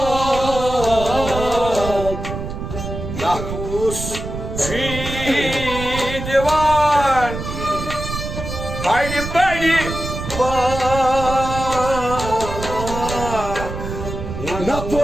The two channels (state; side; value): noise; right; rumble, 7 dB below the sound